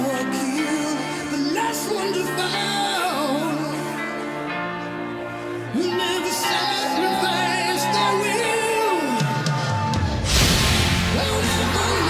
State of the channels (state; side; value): identical; both; correlation 1.00